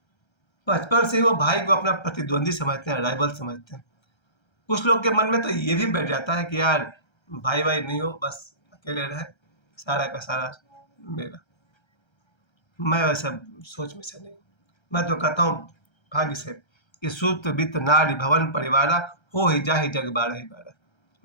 बचपन से ही वो भाई को अपना प्रतिद्वंदी समझते हैं, राइवल समझते हैं। कुछ लोग के मन में तो ये भी बैठ जाता है कि यार भाई भाई नहीं हो, बस अकेले रहे, सारा का सारा मेरा। मैं वैसा सोच में से नहीं, मैं तो कहता हूँ भाग्य से कि सूत वित्त नारी भवन परिवारा, हो ही जा ही जग बारह ही बारह।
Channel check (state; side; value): late; right; 1.3 ms